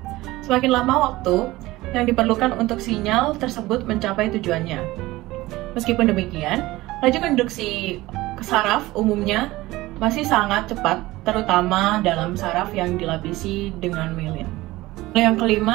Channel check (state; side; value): quieter; left; 18.6 dB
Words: semakin lama waktu yang diperlukan untuk sinyal tersebut mencapai tujuannya. Meskipun demikian, laju konduksi ke saraf umumnya masih sangat cepat, terutama dalam saraf yang dilapisi dengan mielin. Yang